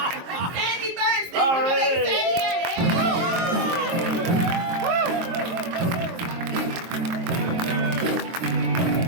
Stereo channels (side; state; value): left; late; 23 ms